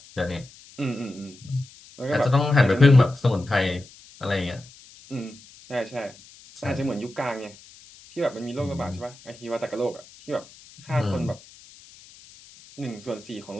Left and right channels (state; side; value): noise; left; hiss, 22 dB below the sound